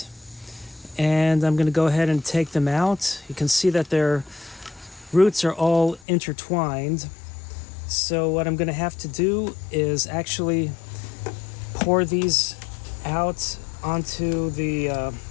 and I'm going to go ahead and take them out. You can see that their roots are all intertwined. So what I'm going to have to do is actually pour these out onto the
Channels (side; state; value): right; drops out; at 6.0 s